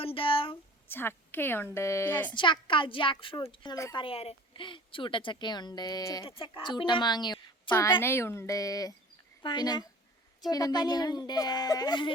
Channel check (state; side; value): normal; both; correlation 0.44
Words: ഉണ്ട്, ചക്കയുണ്ട്, ചക്ക, ജാക്ക് ഫ്രൂട്ട് നമ്മൾ പറയാറ്, ചൂട്ടച്ചക്കയുണ്ട്, ചൂട്ടമാങ്ങ, പനയുണ്ട്, പിന്നെ ചൂട്ടപ്പനയുണ്ട്,